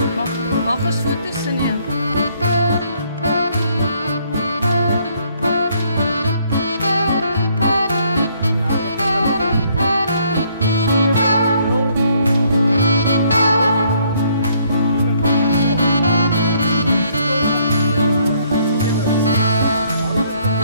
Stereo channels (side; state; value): both; inverted; correlation -0.66